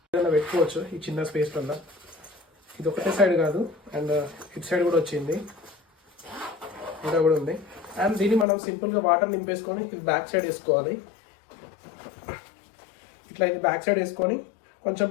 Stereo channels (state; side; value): drops out; right; at 8.5 s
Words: ఏదైనా పెట్టుకోవచ్చు ఈ చిన్న స్పేస్లలో. ఇది ఒకటే సైడ్ కాదు, అండ్ ఇటు సైడ్ కూడా వచ్చింది, ఇంకా కూడా ఉంది. అండ్ దీన్ని మనం సింపుల్గా వాటర్ నింపేసుకొని ఇది బ్యాక్ సైడ్ వేసుకోవాలి. ఇట్లా ఇది బ్యాక్ సైడ్ వేసుకొని కొంచెం